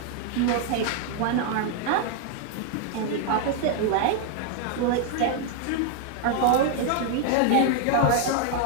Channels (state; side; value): different; both; correlation 0.00